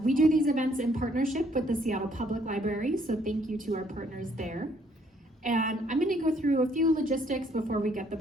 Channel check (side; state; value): both; normal; correlation 0.66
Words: We do these events in partnership with the Seattle Public Library, so thank you to our partners there. And I'm going to go through a few logistics before we get the